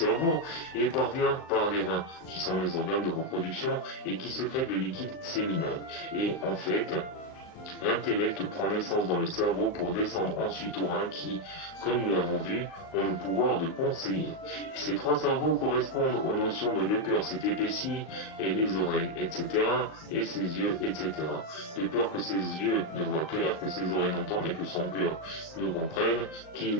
et parvient par les reins, qui sont les organes de reproduction et qui sécrètent le liquide séminal. Et en fait, l'intellect prend naissance dans le cerveau pour descendre ensuite aux reins qui, comme nous l'avons vu, ont le pouvoir de conseiller. Ces 3 cerveaux correspondent aux notions de le cœur s'est épaissi, et les oreilles, etc., et ses yeux, etc. De peur que ses yeux ne voient clair, que ses oreilles n'entendent et que son cœur ne comprenne, qu'il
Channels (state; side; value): late; right; 38 ms